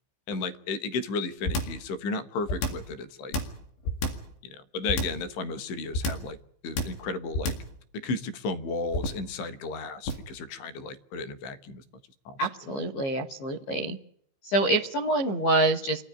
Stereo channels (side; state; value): right; late; 15 ms